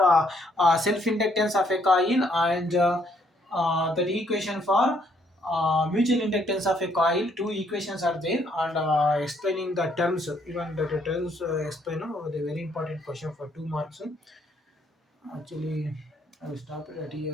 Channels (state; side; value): normal; both; correlation 0.69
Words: self inductance of a coil, and that equation for mutual inductance of a coil, two equations are there, and explaining the terms, even the terms explain the very important question for 2 marks. Actually, I will stop it at